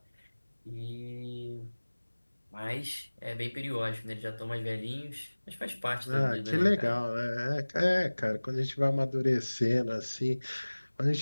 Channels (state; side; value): inverted; both; correlation -1.00